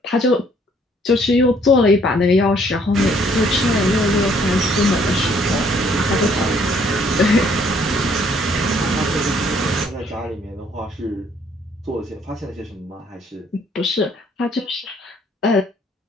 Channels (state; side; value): normal; both; correlation 0.64